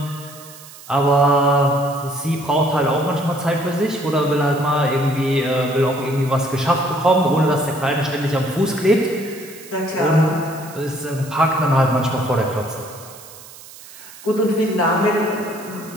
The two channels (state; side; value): noise; right; hiss, 18 dB below the sound